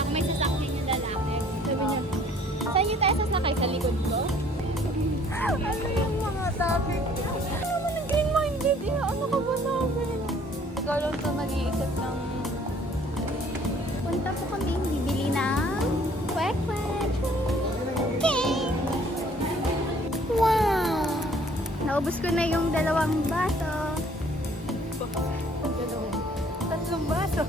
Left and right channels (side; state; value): both; normal; correlation 0.58